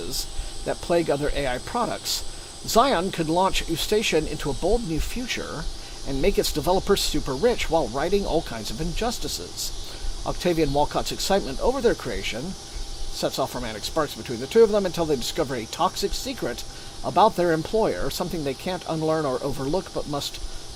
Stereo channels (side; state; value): both; identical; correlation 1.00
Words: that plague other AI products. Zion could launch Ustation into a bold new future and make its developers super rich while righting all kinds of injustices. Octavia and Walcott's excitement over their creation sets off romantic sparks between the two of them until they discover a toxic secret about their employer, something they can't unlearn or overlook but must